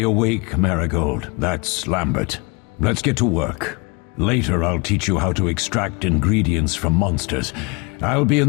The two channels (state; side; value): quieter; right; 29.4 dB